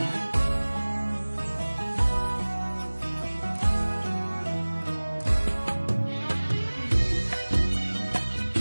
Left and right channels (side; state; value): both; inverted; correlation -1.00